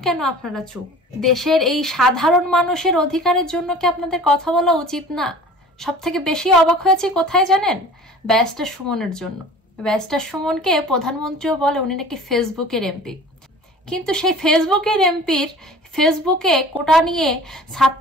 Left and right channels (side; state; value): both; normal; correlation 0.43